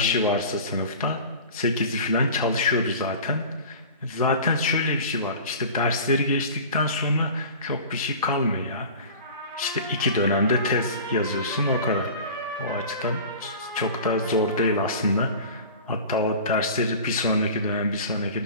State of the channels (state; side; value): inverted; both; correlation -0.38